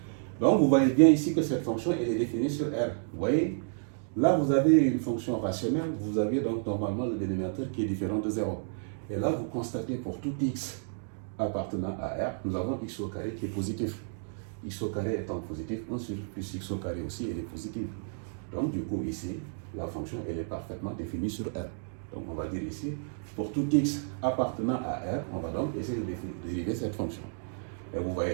Donc, vous voyez bien ici que cette fonction elle est définie sur R. Vous voyez, là vous avez une fonction rationnelle, vous avez donc normalement le dénominateur qui est différent de 0. Et là, vous constatez pour tout x appartenant à R, nous avons x au carré qui est positif. X au carré étant positif, 1 sur plus x au carré aussi, elle est positive. Donc du coup ici, la fonction elle est parfaitement définie sur R. Donc on va dire ici, pour tout x appartenant à R, on va donc essayer de dériver cette fonction. Et vous voyez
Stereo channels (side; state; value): left; silent; digital silence